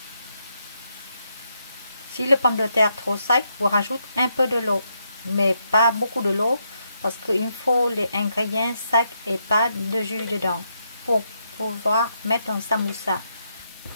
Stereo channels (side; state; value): both; inverted; correlation -0.80